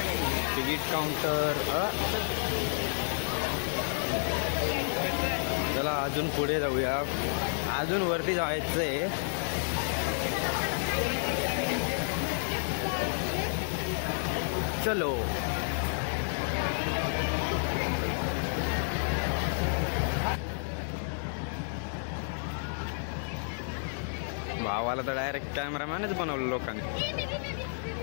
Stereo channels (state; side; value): silent; right; digital silence